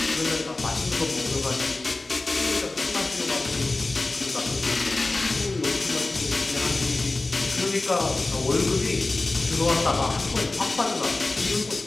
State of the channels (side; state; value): right; quieter; 3.2 dB